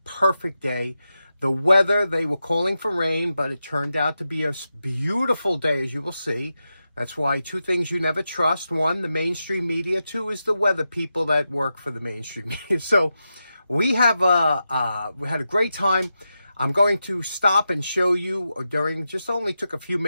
perfect day. The weather, they were calling for rain, but it turned out to be a beautiful day, as you will see. That's why two things you never trust. One, the mainstream media. Two is the weather people that work for the mainstream media. So we had a great time. I'm going to stop and show you just only took a few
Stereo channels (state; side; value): inverted; both; correlation -0.89